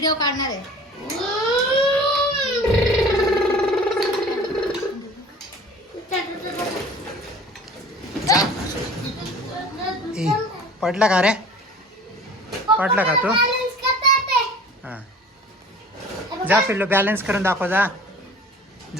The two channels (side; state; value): both; normal; correlation 0.45